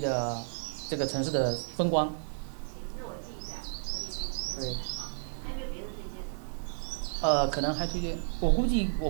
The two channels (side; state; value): left; silent; digital silence